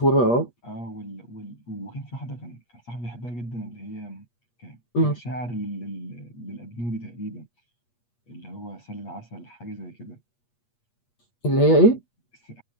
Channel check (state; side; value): late; right; 8.4 ms